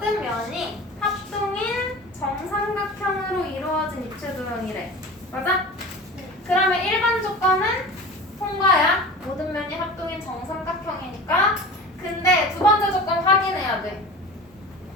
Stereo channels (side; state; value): both; normal; correlation 0.35